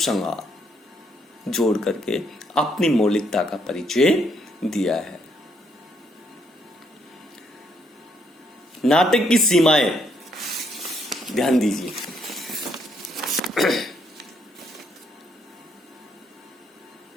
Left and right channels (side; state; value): both; normal; correlation 0.72